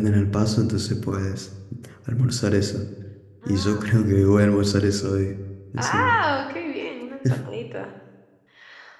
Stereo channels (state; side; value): identical; both; correlation 1.00